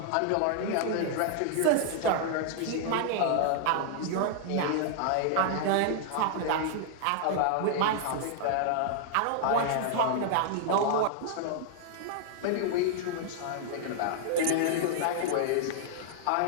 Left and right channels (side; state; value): both; different; correlation 0.00